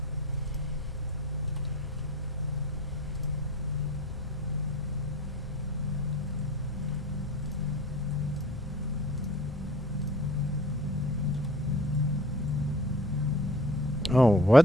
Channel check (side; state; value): both; normal; correlation 0.44